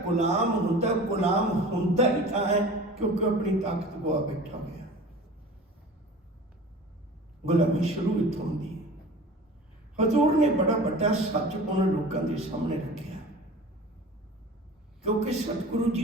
ਗੁਲਾਮ ਹੁੰਦਾ ਹੀ ਤਾਂ ਹੈ क्योंकि अपनी ताकत गवा बैठा गया। गुलामी शुरू इत्थों होंदी है। हजूर ने बड़ा बड़ा सच उन्होंने लोगों के सामने रखा, क्योंकि सतगुरु जी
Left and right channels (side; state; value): both; normal; correlation 0.40